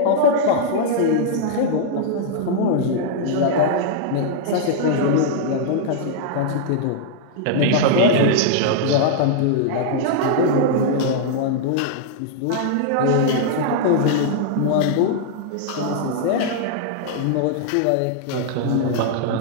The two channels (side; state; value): both; different; correlation -0.01